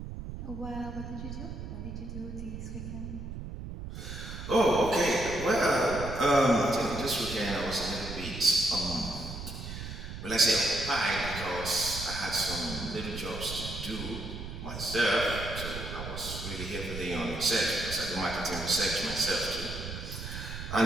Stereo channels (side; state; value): right; noise; rumble, 8 dB below the sound